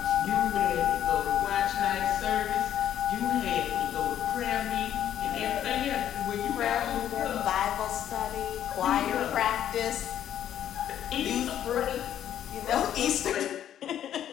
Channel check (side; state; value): right; quieter; 10.6 dB